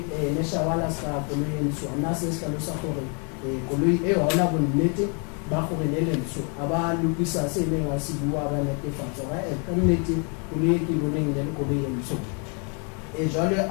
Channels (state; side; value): quieter; right; 37.1 dB